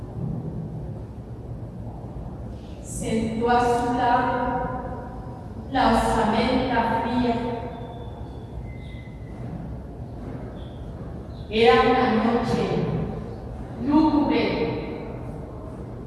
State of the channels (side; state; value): both; identical; correlation 1.00